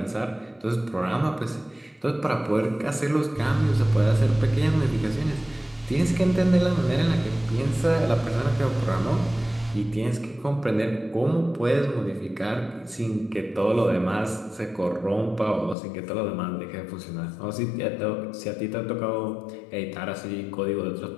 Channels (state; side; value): drops out; right; at 15.8 s